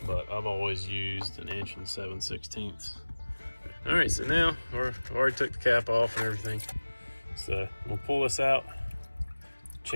but I've always used 1 7/16 inches. All right, so now I've already took the cap off and everything. So we'll pull this out,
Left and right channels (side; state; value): both; inverted; correlation -1.00